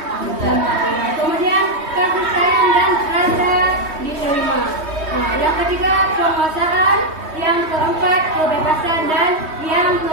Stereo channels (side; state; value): left; late; 3.2 ms